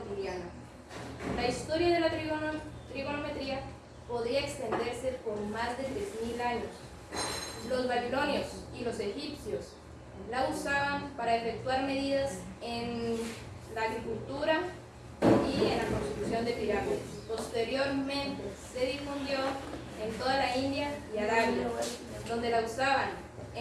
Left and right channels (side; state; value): both; identical; correlation 1.00